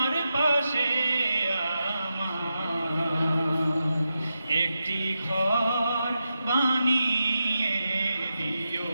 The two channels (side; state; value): both; inverted; correlation -0.89